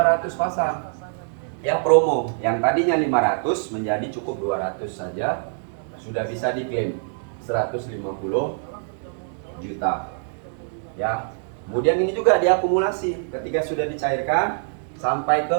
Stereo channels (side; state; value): left; silent; 63 dB below the other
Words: pasang ya, promo. Yang tadinya 500 menjadi cukup 200 saja, sudah bisa diklaim 150 juta ya. Kemudian ini juga diakumulasi ketika sudah dicairkan sampai ke